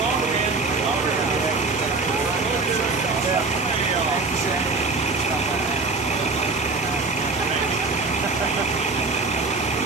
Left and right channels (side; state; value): left; quieter; 3.8 dB